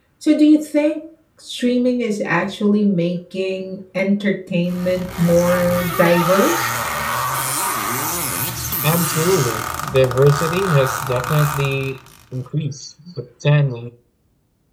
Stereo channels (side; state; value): both; identical; correlation 1.00